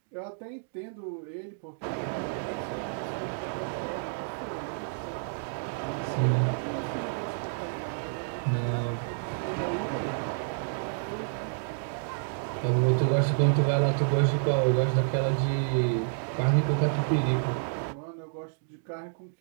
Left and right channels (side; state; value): left; silent; digital silence